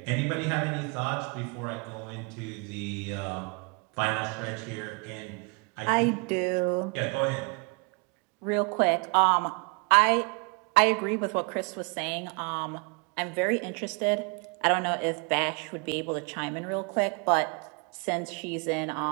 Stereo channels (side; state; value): left; quieter; 33.0 dB